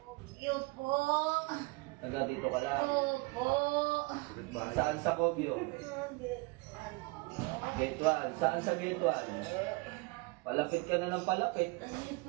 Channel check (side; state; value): left; quieter; 26.2 dB